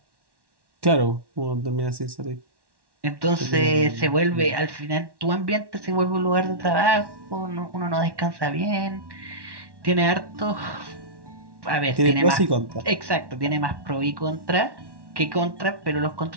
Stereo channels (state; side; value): late; left; 1.1 ms